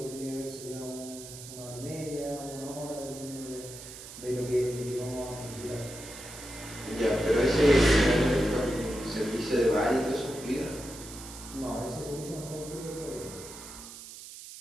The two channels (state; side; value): noise; right; hiss, 13 dB below the sound